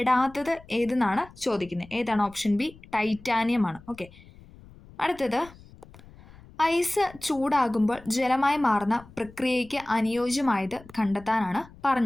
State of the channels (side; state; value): left; noise; rumble, 22 dB below the sound